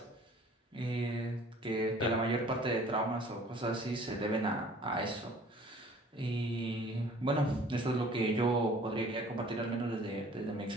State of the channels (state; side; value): normal; both; correlation 0.51